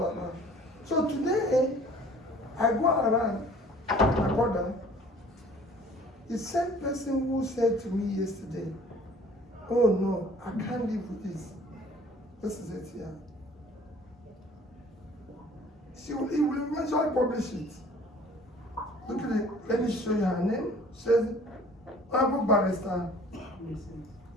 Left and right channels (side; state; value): both; normal; correlation 0.52